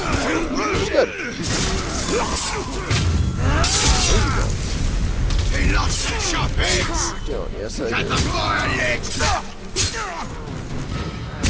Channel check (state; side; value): identical; both; correlation 1.00